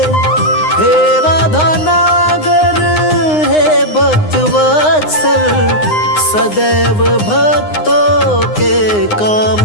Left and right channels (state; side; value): late; right; 9.7 ms